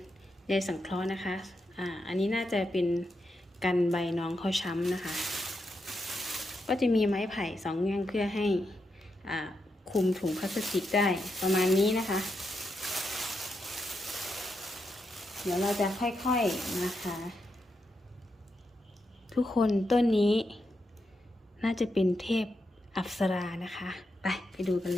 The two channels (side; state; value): both; normal; correlation 0.84